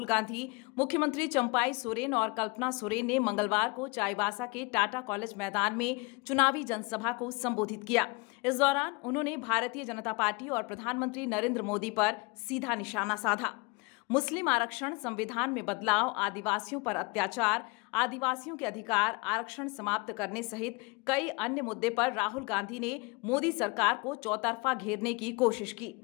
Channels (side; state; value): right; quieter; 27.2 dB